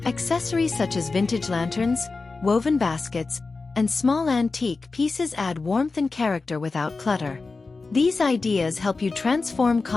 Accessories such as vintage lanterns, woven baskets, and small antique pieces add warmth and character without clutter. These ideas help you transform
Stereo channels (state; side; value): quieter; right; 3.9 dB